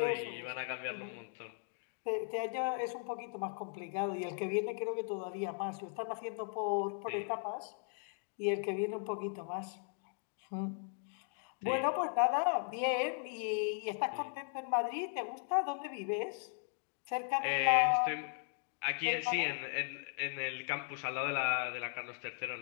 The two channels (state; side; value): silent; right; 53 dB below the other